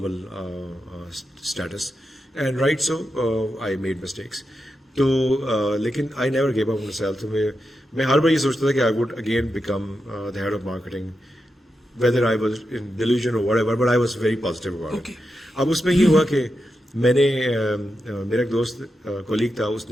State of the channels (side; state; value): both; normal; correlation 0.88